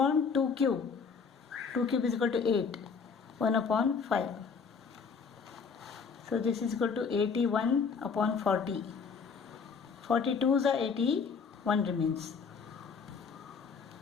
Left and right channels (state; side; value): quieter; right; 5.6 dB